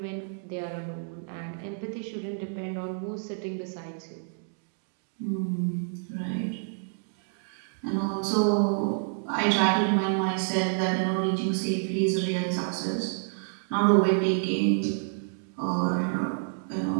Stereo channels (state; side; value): silent; left; digital silence